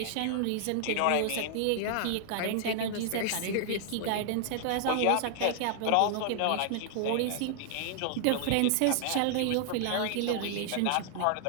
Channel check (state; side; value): different; both; correlation 0.00